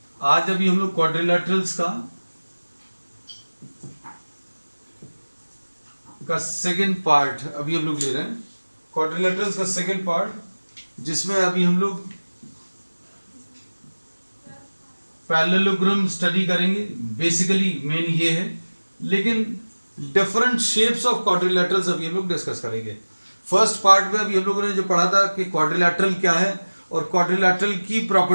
आज अभी हम लोग क्वाड्रिलैटरल्स का सेकेंड पार्ट अभी हम लोग ले रहे हैं। क्वाड्रिलैटरल्स का सेकेंड पार्ट जिसमें अभी हम लोग पैरेललोग्राम स्टडी करेंगे। बेसिकली मेन ये है, लेकिन डिफरेंट शेप्स ऑफ क्वाड्रिलैटरल्स अभी हम लोग डिस्कस करेंगे। फर्स्ट पार्ट में अभी हम लोगों ने जो पढ़ा था कि क्वाड्रिलैटरल क्या है और क्वाड्रिलैटरल की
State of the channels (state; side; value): inverted; both; correlation -1.00